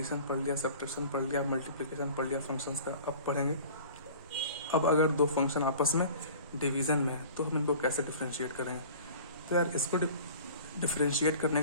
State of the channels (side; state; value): both; inverted; correlation -0.44